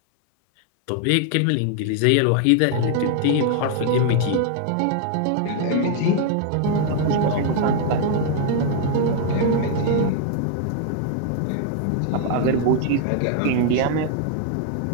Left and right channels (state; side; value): different; both; correlation 0.00